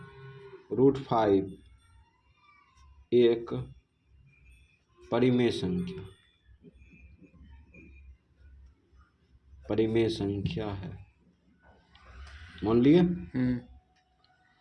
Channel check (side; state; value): both; identical; correlation 1.00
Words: एक परिमेय संख्या है, मान लिए।